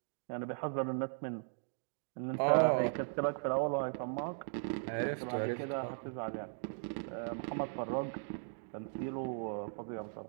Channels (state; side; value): silent; left; digital silence